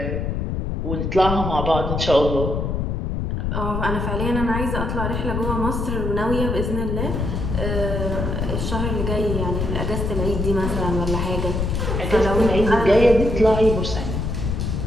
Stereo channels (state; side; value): noise; left; rumble, 1 dB below the sound